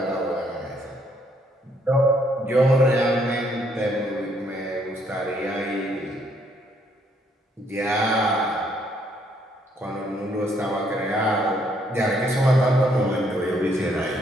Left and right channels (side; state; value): both; normal; correlation 0.69